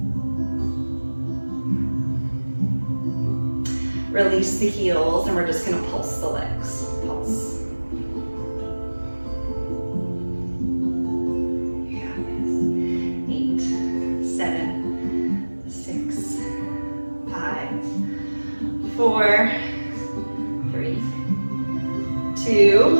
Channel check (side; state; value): both; inverted; correlation -1.00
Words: Release the heels, and we're just going to pulse the legs. Pulse. You got this. 8, 7, 6, 5, 4, 3, 2.